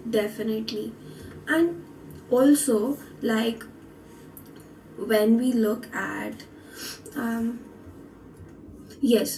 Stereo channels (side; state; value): both; identical; correlation 1.00